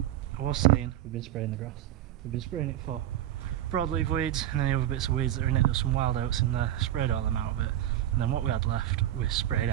I was saying we've been spraying the grass. We've been spraying it for broadleaf weeds and any other bits of weeds that are in it. There's some wild oats in there. Sprayed all them out a bit, and then what we had left we sprayed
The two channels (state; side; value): quieter; left; 12.7 dB